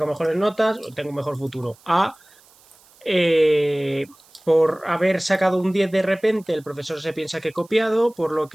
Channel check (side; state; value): right; noise; hiss, 29 dB below the sound